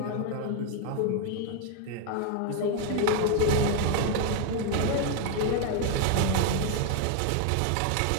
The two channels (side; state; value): both; different; correlation 0.01